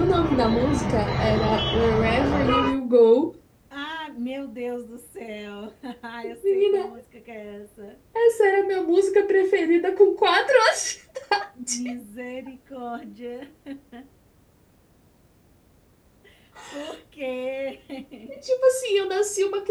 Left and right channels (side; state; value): both; identical; correlation 1.00